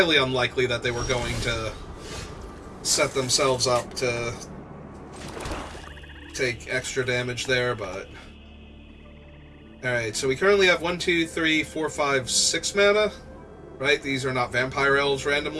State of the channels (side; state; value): both; identical; correlation 1.00